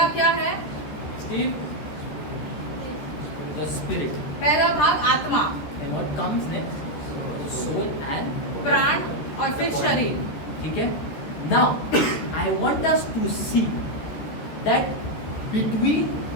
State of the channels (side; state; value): right; late; 14 ms